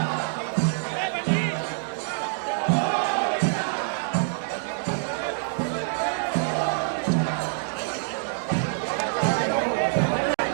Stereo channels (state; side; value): silent; left; digital silence